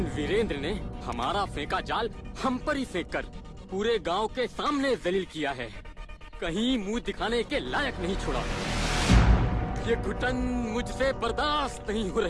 वीरेंद्र ने हमारा फेंका जाल हम पर ही फेंक कर पूरे गांव के सामने जलील किया है। कहीं मुंह दिखाने के लायक नहीं छोड़ा। ये घुटन मुझसे बर्दाश्त नहीं हो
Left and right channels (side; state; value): both; identical; correlation 1.00